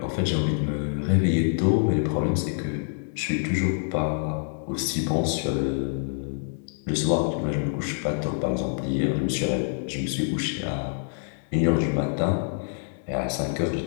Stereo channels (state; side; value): silent; right; 61 dB below the other